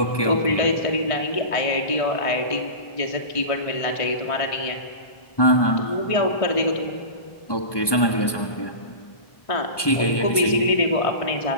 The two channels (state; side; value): late; right; 1.2 ms